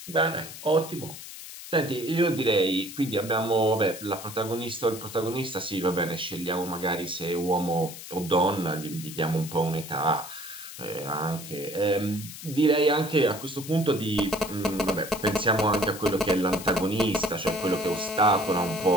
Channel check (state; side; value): noise; left; hiss, 12 dB below the sound